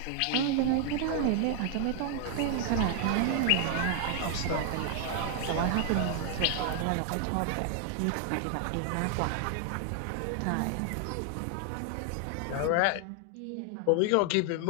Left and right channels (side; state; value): both; different; correlation 0.00